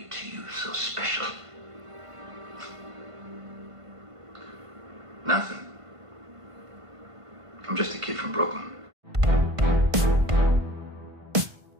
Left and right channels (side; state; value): left; late; 1.5 ms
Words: you so special? Nothing. I'm just a kid from Brooklyn.